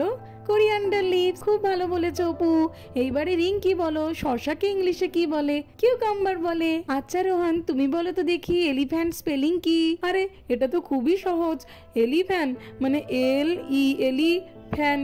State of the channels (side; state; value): both; identical; correlation 1.00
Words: Coriander leaves. খুব ভালো বলেছো অপু। এইবারে রিঙ্কি বলো, শশাকে ইংলিশে কি বলে? কিউকাম্বার বলে। আচ্ছা রোহান, তুমি বলো তো দেখি, এলিফ্যান্ট স্পেলিং কি? আরে এটা তো খুবই সহজ, এলিফ্যান্ট মানে LELI